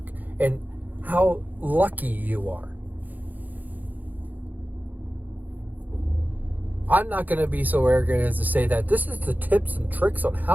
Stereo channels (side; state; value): left; late; 0.083 ms